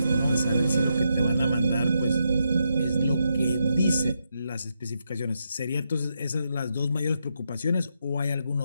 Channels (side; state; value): both; inverted; correlation -0.82